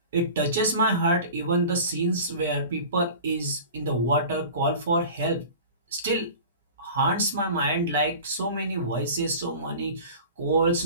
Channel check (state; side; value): inverted; both; correlation -0.38